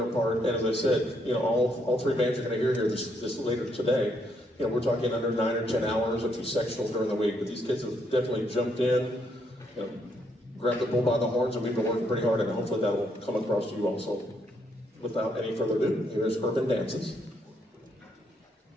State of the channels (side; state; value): both; normal; correlation 0.74